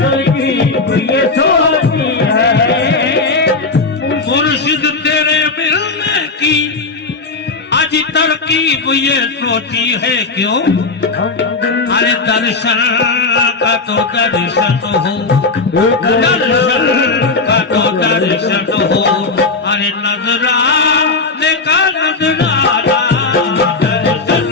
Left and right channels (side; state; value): right; quieter; 3.9 dB